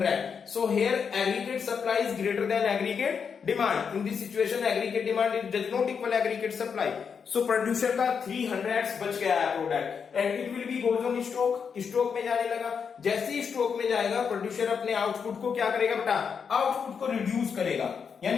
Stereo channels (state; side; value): quieter; right; 6.4 dB